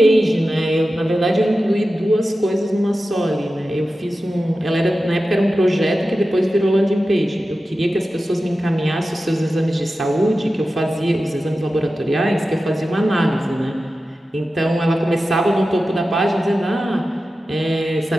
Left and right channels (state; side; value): normal; both; correlation 0.93